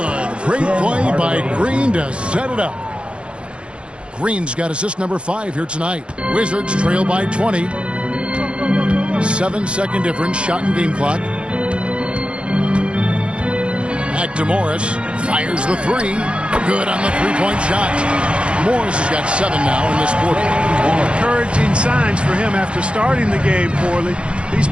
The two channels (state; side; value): late; left; 0.058 ms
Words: Great play by Green to set it up. Green's got assist number 5 here tonight. Wizards trail by 20. 7-second difference. Shot and game clock. Back to Morris. Fires the 3. Good on the three-point shot. Morris has got 7 now in this quarter. Encouraging signs for him after starting the game poorly. He's